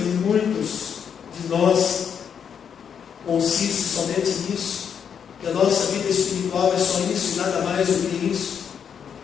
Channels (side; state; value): right; quieter; 7.6 dB